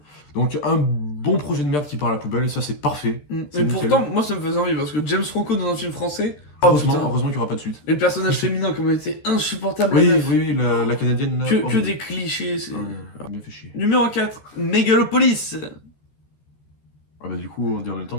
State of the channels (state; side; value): late; right; 14 ms